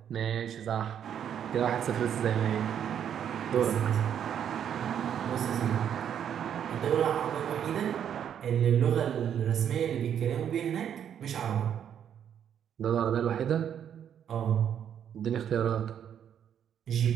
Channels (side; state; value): left; quieter; 9.0 dB